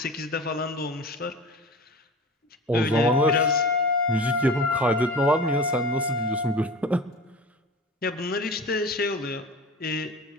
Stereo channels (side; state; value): both; normal; correlation 0.35